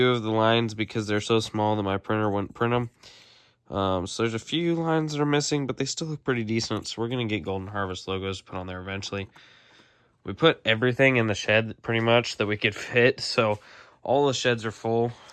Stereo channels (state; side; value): identical; both; correlation 1.00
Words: of the lines because they're so small that my printer wouldn't print them. So there's a few lines that are missing, but they still look pretty decent. So we're going to get Golden Harvest logos put on there eventually. We put everything in the shed pretty much that we could fit. So all the sheds are full.